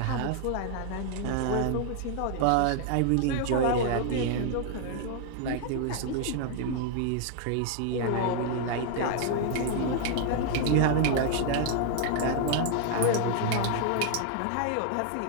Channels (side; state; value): both; different; correlation 0.00